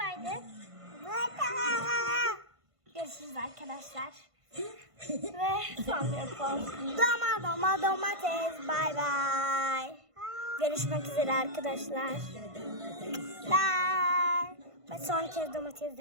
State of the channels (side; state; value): left; late; 1.5 ms